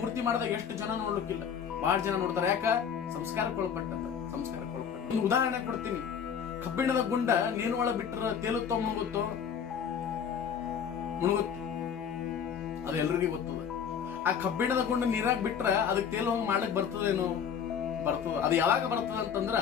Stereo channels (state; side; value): quieter; right; 7.6 dB